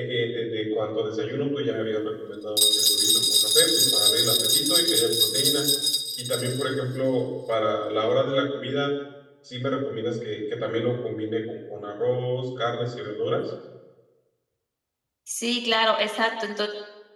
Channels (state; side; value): identical; both; correlation 1.00